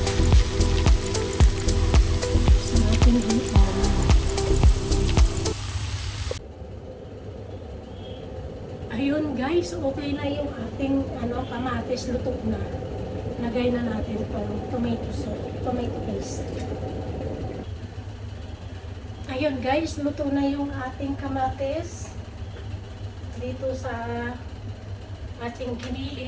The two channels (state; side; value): identical; both; correlation 1.00